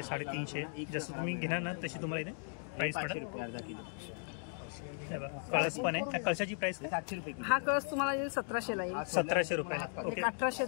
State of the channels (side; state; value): right; silent; 53 dB below the other